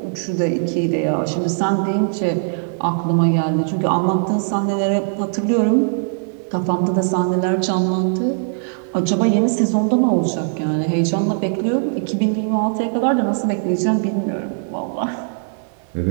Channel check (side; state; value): left; silent; digital silence